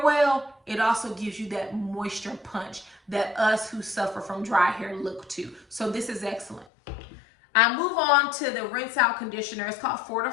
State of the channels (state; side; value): drops out; right; at 6.7 s